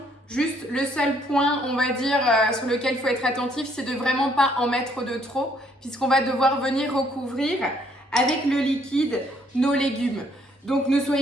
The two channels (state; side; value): normal; both; correlation 0.67